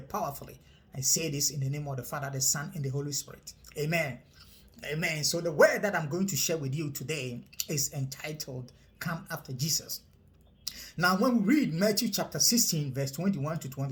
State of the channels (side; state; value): both; identical; correlation 1.00